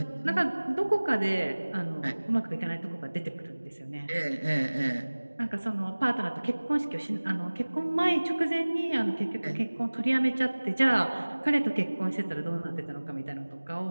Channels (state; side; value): inverted; both; correlation -1.00